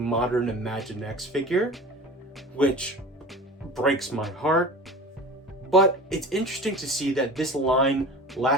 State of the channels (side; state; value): both; normal; correlation 0.37